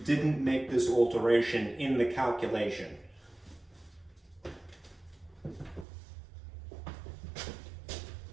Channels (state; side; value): drops out; left; at 5.9 s